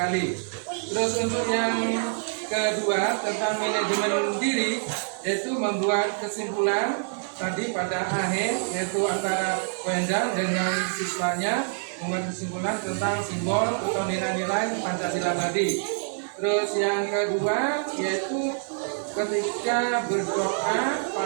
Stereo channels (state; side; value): silent; left; 61 dB below the other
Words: Terus untuk yang kedua tentang manajemen diri, yaitu membuat kesimpulan tadi pada akhir, yaitu antara Wendang dengan siswanya membuat kesimpulan tentang simbol atau nilai-nilai Pancasila tadi. Terus yang kedua yaitu ketika berdoa